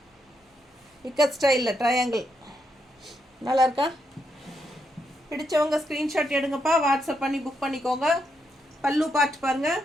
இக்கத் ஸ்டைலில் ட்ரையாங்கிள். நல்லா இருக்கா? பிடிச்சவங்க ஸ்க்ரீன்ஷாட் எடுங்கப்பா. வாட்ஸ்அப் பண்ணி புக் பண்ணிக்கோங்க. பல்லு பார்ட் பாருங்கள்.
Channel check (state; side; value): normal; both; correlation 0.81